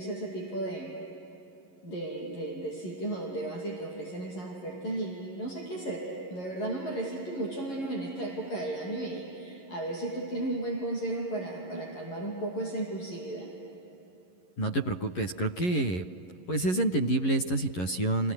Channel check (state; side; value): late; right; 11 ms